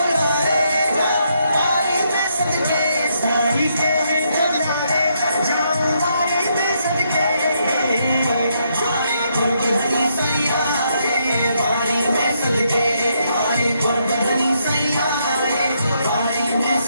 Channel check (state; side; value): inverted; both; correlation -0.76